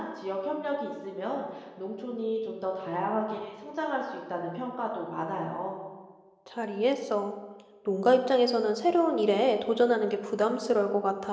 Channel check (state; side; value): identical; both; correlation 1.00